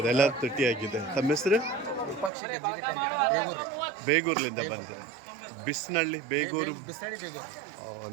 ಎಲ್ಲ ತುಟ್ಟಿ ಆಗಿದೆ. ತಮ್ಮ ಹೆಸರು? ವಿಪಕ್ಷಿಗೆ ಜಿಗಿಟ್ ಅಂತ ಬೇಗೂರು ರೀ ಬೇಗೂರ್ಲಿಂದ ಬಂದೆ. ಬಿಸ್ನಳ್ಳಿ ಬೇಗೂರು. ಬಿಸ್ತಳಿ ಬೇಗೂರು.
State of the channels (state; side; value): drops out; left; at 2.3 s